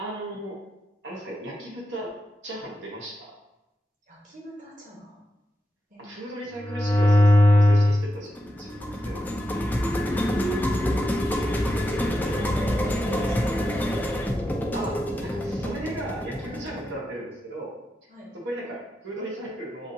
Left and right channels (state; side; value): normal; both; correlation 0.88